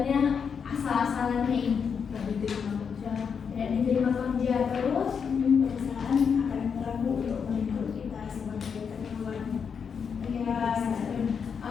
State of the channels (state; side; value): quieter; right; 6.5 dB